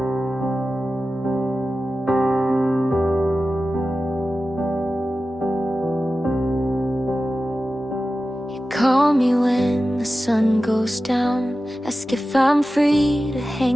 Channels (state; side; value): normal; both; correlation 0.94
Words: Call me when the sun goes down, ask if I'm free to